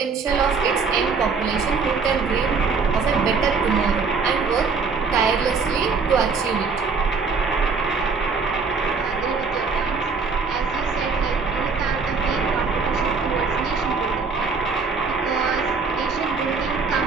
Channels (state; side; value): quieter; left; 4.8 dB